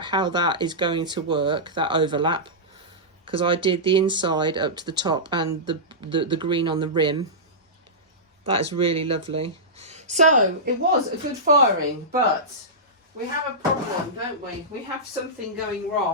how that is going to work, that overlap, because I did the inside up to the top and the green on the rim. That is really lovely. So it was a good firing, but we have a problem, don't we? We have something going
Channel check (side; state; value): both; normal; correlation -0.15